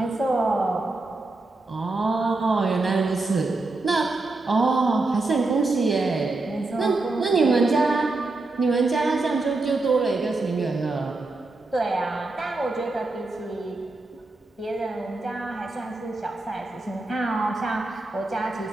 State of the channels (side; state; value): left; quieter; 3.2 dB